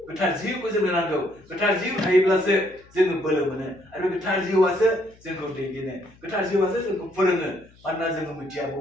गोथार जिउखौ जोंनो नांगौ गोथार जिउ थायोब्लासो जोङो बोलो मोनो आरो गोथार जिउआसो जोंखौ दैदेनो गोथार जिउआसो जोंखौ फोरोङो मानोना जोङो मिथिया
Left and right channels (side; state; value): left; noise; hum, 27 dB below the sound